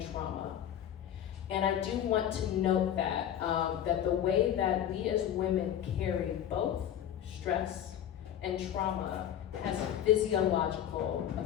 trauma. And I do want to note that, that the way that we as women carry both stress and trauma has physiological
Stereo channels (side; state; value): right; quieter; 10.3 dB